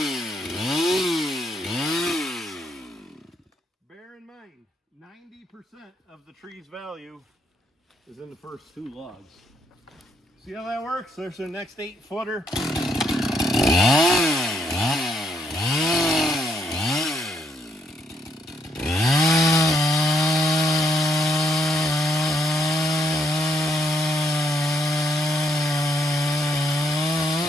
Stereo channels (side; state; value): both; normal; correlation 0.75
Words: Bear in mind, 90% of the tree's value is in the first 2 logs. See how that works? There's our next 8-footer.